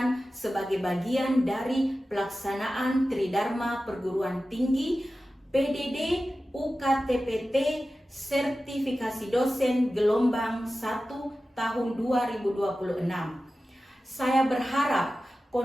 sebagai bagian dari pelaksanaan Tridharma Perguruan Tinggi PDD UKTPT Sertifikasi Dosen Gelombang 1 tahun 2026. Saya berharap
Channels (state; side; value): normal; both; correlation 0.94